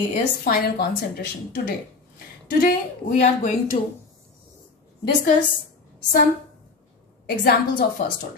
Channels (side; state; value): right; quieter; 4.1 dB